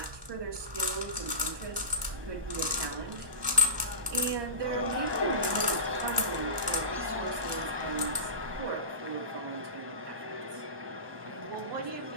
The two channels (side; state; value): left; late; 1.2 ms